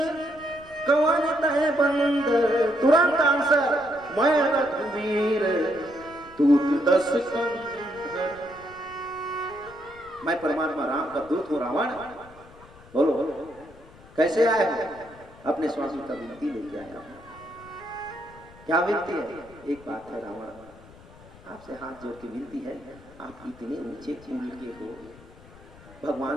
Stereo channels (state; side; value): noise; left; rumble, 22 dB below the sound